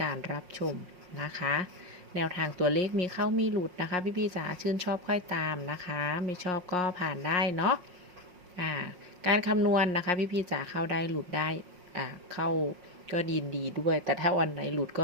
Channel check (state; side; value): late; left; 5.5 ms